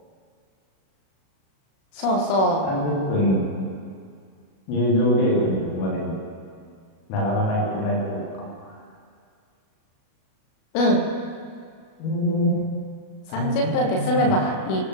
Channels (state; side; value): late; right; 37 ms